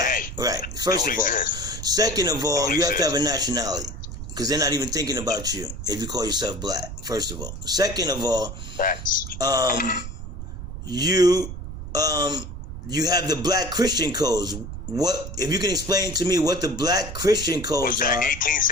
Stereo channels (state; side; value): noise; right; rumble, 9 dB below the sound